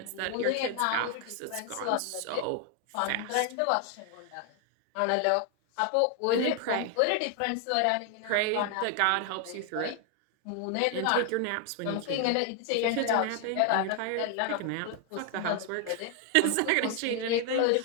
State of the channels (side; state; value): both; different; correlation 0.00